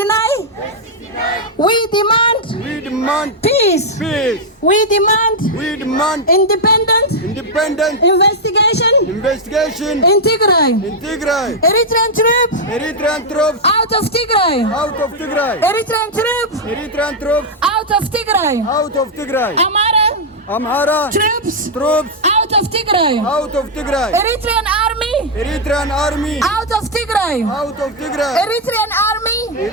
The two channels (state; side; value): normal; both; correlation -0.02